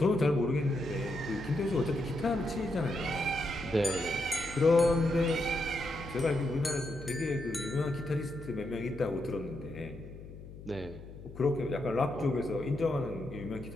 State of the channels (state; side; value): noise; left; hum, 15 dB below the sound